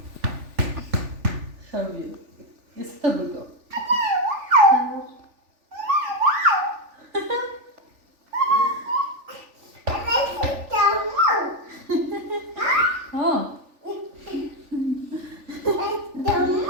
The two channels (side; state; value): left; late; 3.4 ms